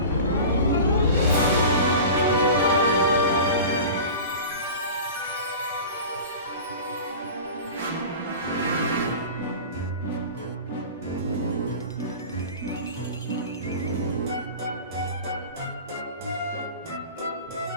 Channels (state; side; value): inverted; both; correlation -0.35